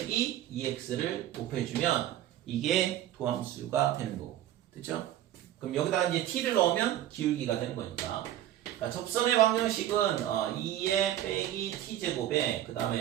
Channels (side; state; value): left; quieter; 12.5 dB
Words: 2x를 곱해주면 이게 도함수가 되는 거고, 됐죠? 그럼 여기다가 이제 t를 넣으면 기울기가 되는 거니까. 그러니까 접선의 방정식은 2의 빼기 t제곱에 그